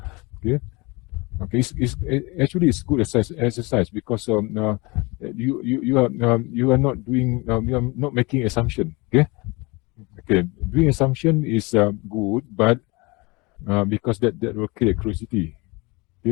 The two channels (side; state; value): right; quieter; 25.9 dB